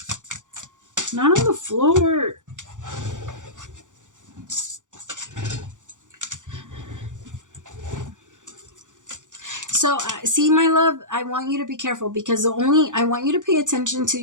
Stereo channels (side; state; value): left; late; 0.86 ms